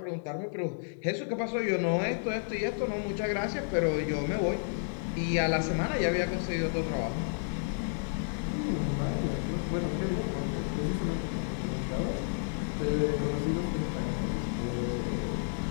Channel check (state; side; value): silent; right; digital silence